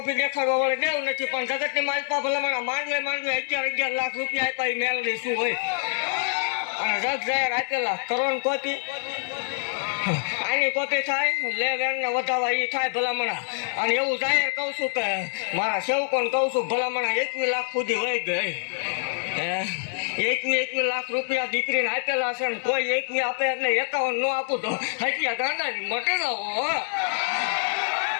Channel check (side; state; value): right; silent; digital silence